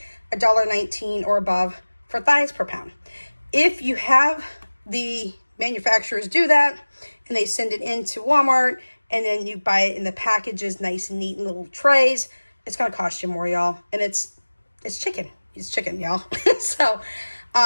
$1.19 or above for thighs per pound. If you have the manufacturers do that and they send it into Walmart, and then you buy it in the packages, nice and neat in little trays, it's going to cost you more, y'all. And it's chicken. It's chicken, y'all. So,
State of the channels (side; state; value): both; inverted; correlation -1.00